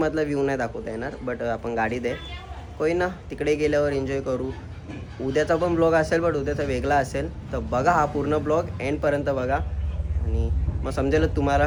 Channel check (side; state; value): both; identical; correlation 1.00